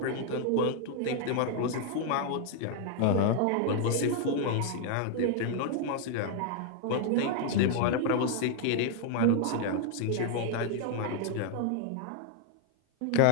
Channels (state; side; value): different; both; correlation 0.00